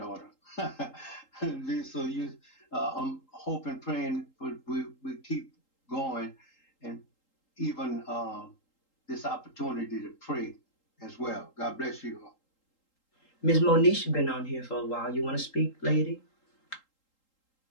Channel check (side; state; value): right; late; 3.8 ms